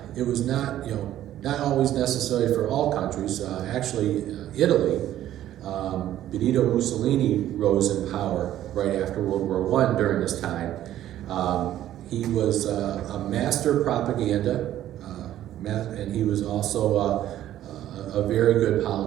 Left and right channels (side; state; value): left; quieter; 12.5 dB